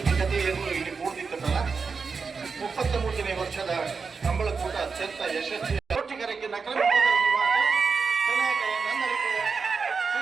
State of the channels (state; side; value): quieter; left; 5.1 dB